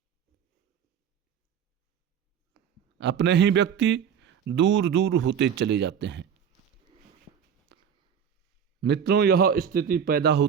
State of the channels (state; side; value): quieter; left; 7.9 dB